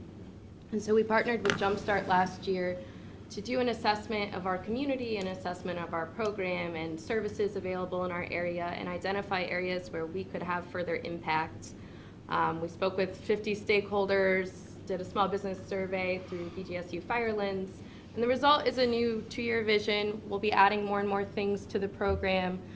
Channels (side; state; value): both; identical; correlation 1.00